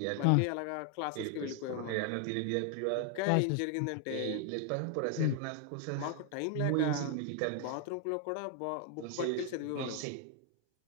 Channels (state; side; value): different; both; correlation 0.00